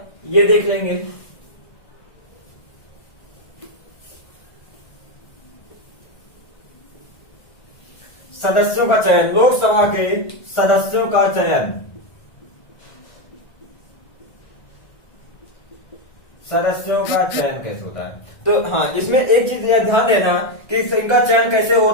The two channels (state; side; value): late; right; 1.4 ms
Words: ये देख लेंगे। सदस्यों का चयन, लोकसभा के सदस्यों का चयन, सदस्यों का चयन कैसे होता है, तो हाँ इसमें एक चीज ध्यान देना कि इनका चयन कैसे